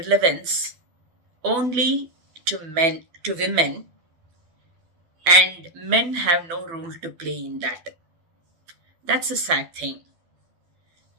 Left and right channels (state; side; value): late; left; 12 ms